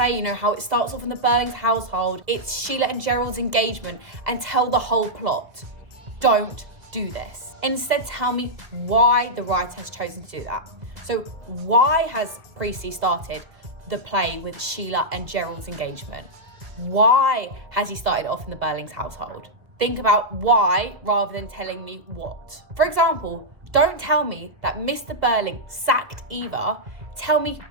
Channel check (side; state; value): left; late; 1.8 ms